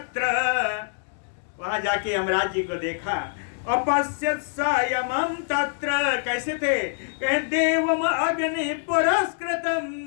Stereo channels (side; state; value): right; silent; digital silence